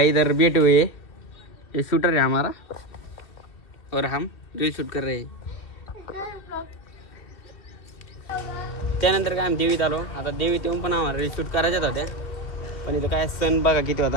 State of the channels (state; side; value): late; right; 2.8 ms